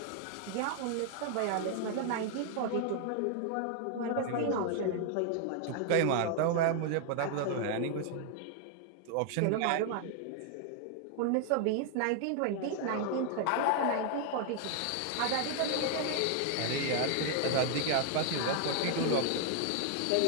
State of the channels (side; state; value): both; different; correlation 0.00